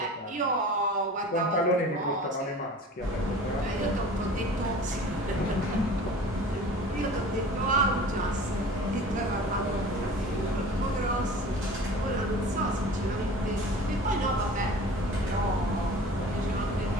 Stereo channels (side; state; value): both; normal; correlation 0.41